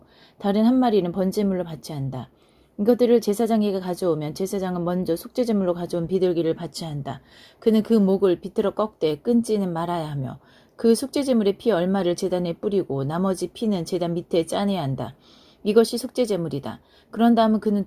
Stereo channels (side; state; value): both; identical; correlation 1.00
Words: 다른 한 마리는 번제물로 바쳐야 한다. 이것들을 제사장에게 가져오면 제사장은 먼저 속죄제물로 가져온 비둘기를 바쳐야 한다. 그는 그 목을 비틀어 꺾되 끊지는 말아야 하며 그 속죄제물의 피 얼마를 제단에 뿌리고 나머지 피는 제단 밑에 짜내야 한다. 이것이 속죄제물이다. 그런 다음은 그는